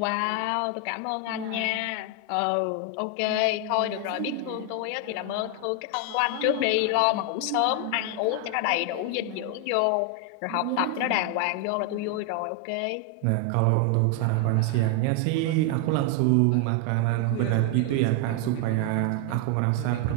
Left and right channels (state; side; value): different; both; correlation 0.01